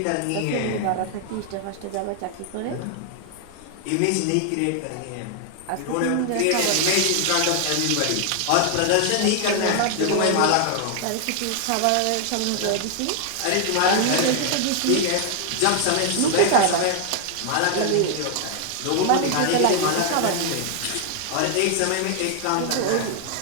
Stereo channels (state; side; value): different; both; correlation 0.00